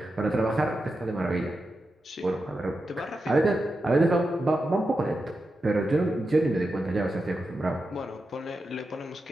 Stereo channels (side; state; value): both; normal; correlation 0.89